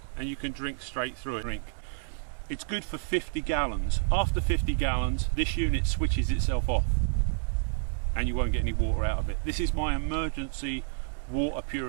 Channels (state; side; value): silent; left; 58 dB below the other